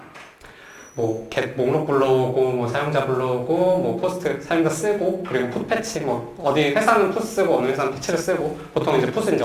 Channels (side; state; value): both; identical; correlation 1.00